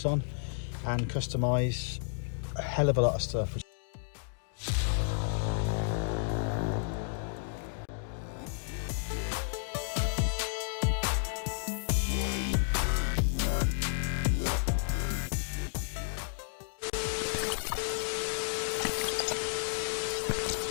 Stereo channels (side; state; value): right; silent; digital silence